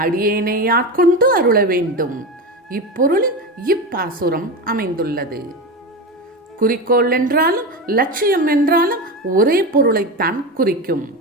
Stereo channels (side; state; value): both; normal; correlation 0.21